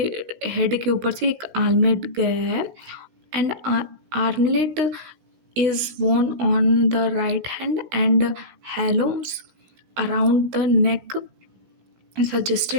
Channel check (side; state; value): left; late; 16 ms